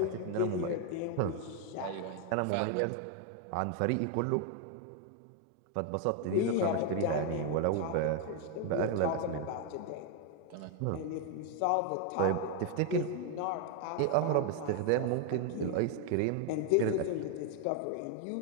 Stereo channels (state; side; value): different; both; correlation 0.01